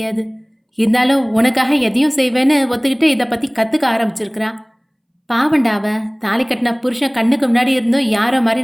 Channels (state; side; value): identical; both; correlation 1.00